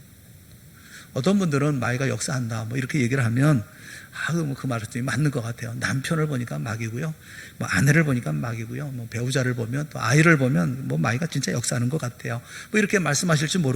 어떤 분들은 마귀가 역사한다 뭐 이렇게 얘기를 하면 그 말씀이 맞는 것 같아요. 남편을 보니까 마귀고요, 뭐 아내를 보니까 마귀고요, 뭐 배우자를 보면, 또 아이를 보면 뭐 마귀가 진짜 역사하는 것 같아요. 뭐 이렇게 말씀하실지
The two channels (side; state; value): both; identical; correlation 1.00